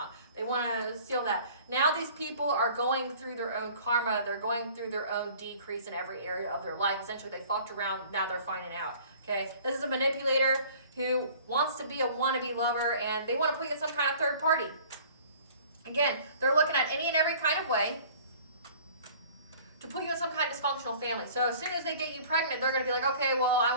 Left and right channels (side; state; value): both; inverted; correlation -0.49